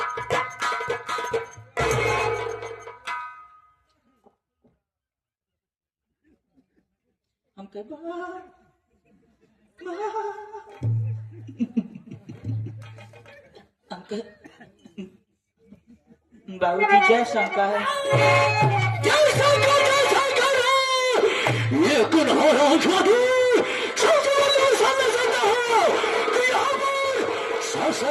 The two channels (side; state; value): both; identical; correlation 1.00